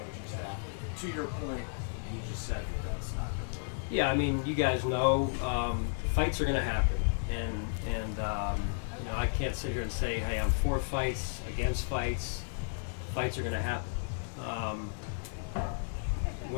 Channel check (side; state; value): right; silent; digital silence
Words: staff? To your point, you just said that's not going to work. Yeah, I mean, you guys know fights are going to happen, and you know, I can't sit here and say, hey, I'm for fights, against fights. Fights are going to happen.